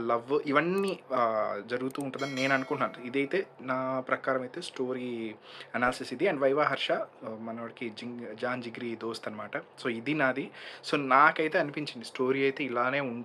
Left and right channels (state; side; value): identical; both; correlation 1.00